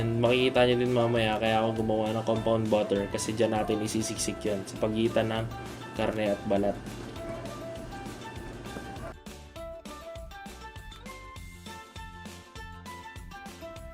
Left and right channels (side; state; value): both; identical; correlation 1.00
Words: makikita nyo din mamaya kaya ako gumawa ng compound butter kasi dyan natin isisiksik yan sa pagitan ng karne at balat.